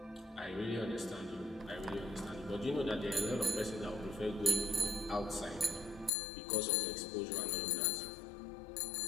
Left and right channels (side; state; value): right; drops out; at 6.1 s